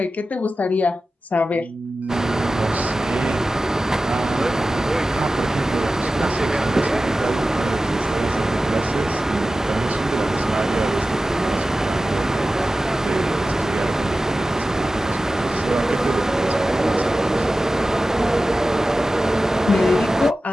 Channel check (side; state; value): both; normal; correlation 0.95